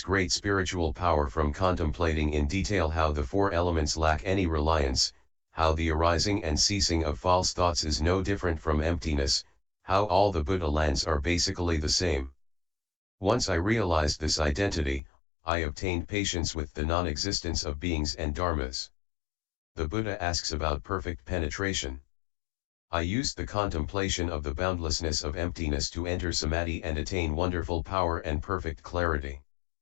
great spiritual power from contemplating in detail how the 4 elements lack any reliance, how the arising and ceasing of false thoughts is no different from emptiness, how all the Buddha lands are basically the same. Once I realized this identity, I obtained patience with the non-existence of beings and dharmas. The Buddha asks about perfect penetration. I used the contemplation of the boundlessness of emptiness to enter Samadhi and attain wonderful power and perfect clarity.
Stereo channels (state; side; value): drops out; right; at 15.0 s